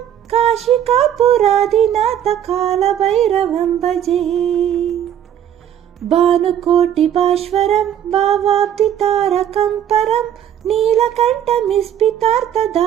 काशिकापुरादिनाथकालभैरवं भजे భానుకోటిభాస్వరం భావాబ్ధితారకం పరం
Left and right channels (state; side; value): quieter; left; 10.1 dB